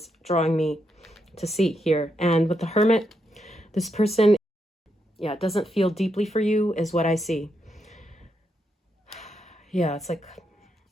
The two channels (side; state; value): both; normal; correlation 0.81